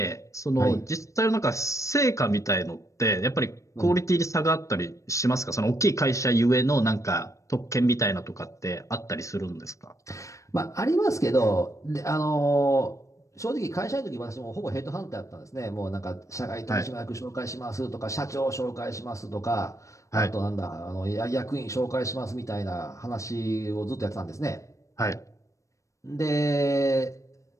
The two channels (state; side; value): late; right; 0.15 ms